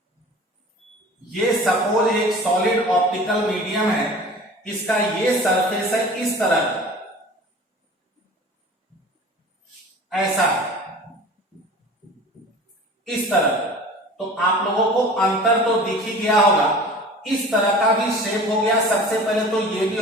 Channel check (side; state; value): both; normal; correlation 0.41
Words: ये सपोज एक सॉलिड ऑप्टिकल मीडियम है, इसका ये सरफेस है इस तरह, ऐसा, इस तरह। तो आप लोगों को अंतर तो दिख ही गया होगा। इस तरह का भी शेप हो गया। सबसे पहले तो ये भी